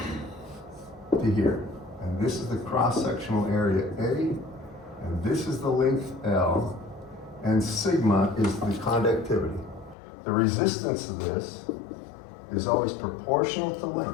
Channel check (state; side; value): drops out; right; at 10.0 s